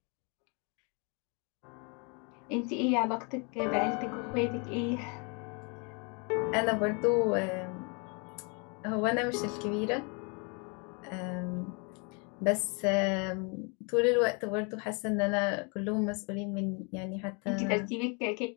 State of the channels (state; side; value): quieter; right; 33.9 dB